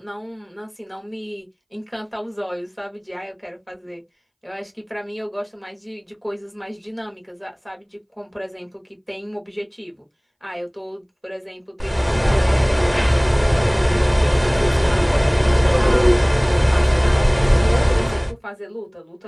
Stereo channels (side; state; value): both; identical; correlation 1.00